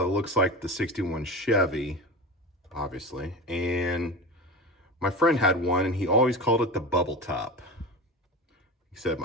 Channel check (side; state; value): both; normal; correlation 0.28